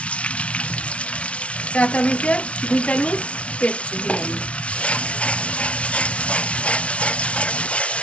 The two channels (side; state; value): right; late; 0.062 ms